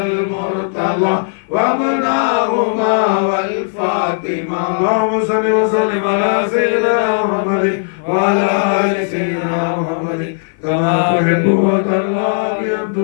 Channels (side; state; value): right; silent; 55 dB below the other